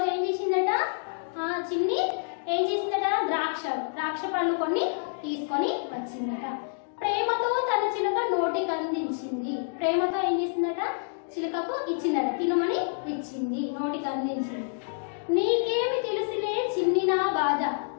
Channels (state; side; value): silent; right; digital silence